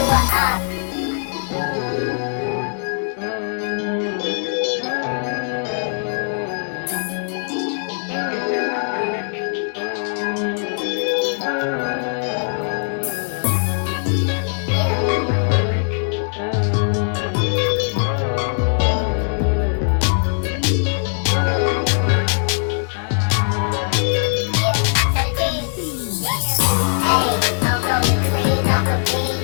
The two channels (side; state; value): right; silent; digital silence